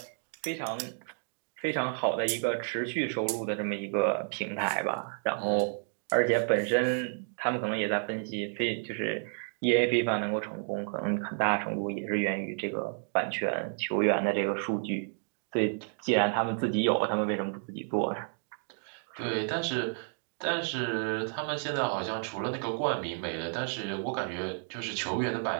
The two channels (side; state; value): left; silent; 57 dB below the other